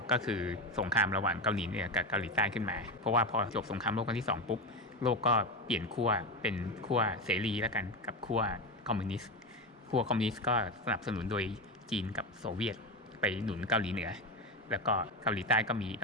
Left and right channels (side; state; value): both; normal; correlation 0.17